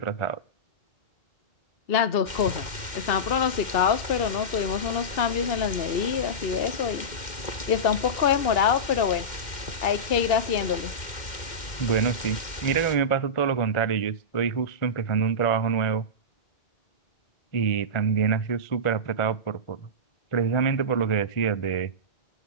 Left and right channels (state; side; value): late; right; 2.1 ms